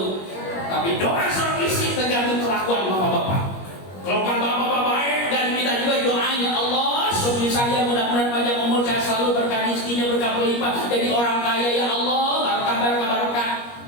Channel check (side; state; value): right; late; 21 ms